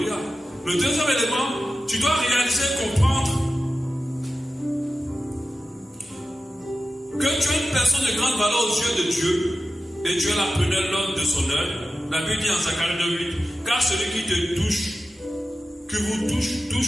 Le deuxième élément, tu dois réaliser, comprendre que tu es une personne de grande valeur aux yeux de Dieu et Dieu l'appelait l'homme de son œuvre. La Bible dit en Zacharie 2:8, car celui qui te touche, que vous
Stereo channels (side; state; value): both; normal; correlation 0.94